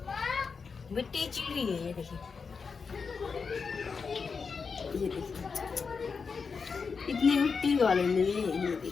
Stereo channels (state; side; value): quieter; right; 5.3 dB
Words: मिट्टी चिड़ी है। ये देखिए, ये देखिए इतनी मिट्टी वाले में ये